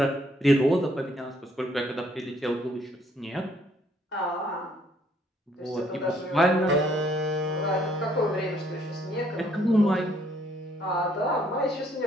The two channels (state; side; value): normal; both; correlation 0.66